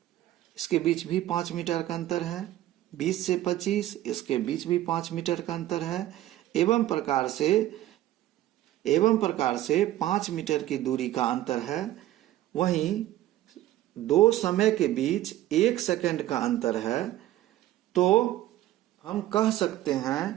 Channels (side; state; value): left; quieter; 14.3 dB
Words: इसके बीच भी 5 मीटर का अंतर है, 20 से 25 इसके बीच भी 5 मीटर का अंतर है। एवं प्रकार से 5 मीटर की दूरी का अंतर है। वहीं 2 समय के बीच 1 सेकंड का अंतर है। तो हम कह सकते